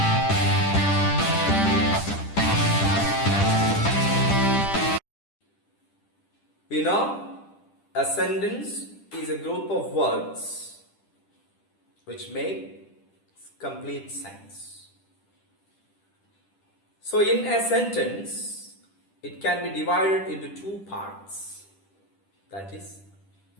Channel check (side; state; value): right; late; 10 ms